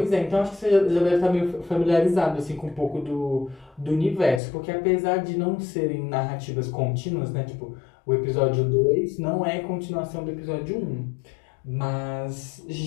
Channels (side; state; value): right; drops out; at 4.4 s